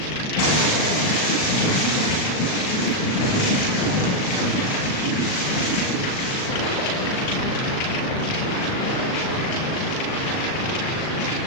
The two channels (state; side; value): late; right; 38 ms